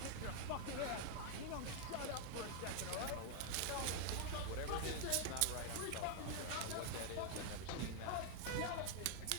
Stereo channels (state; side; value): different; both; correlation 0.00